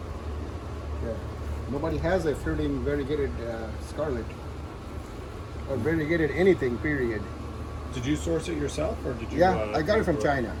Yeah. Nobody has a fruiting variegated scarlet. Or variegated anything, period. Did you source it yourself, or did you? Yeah, I got it from China.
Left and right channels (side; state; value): both; identical; correlation 1.00